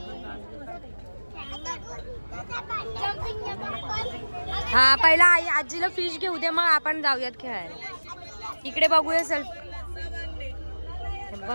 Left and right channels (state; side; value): inverted; both; correlation -1.00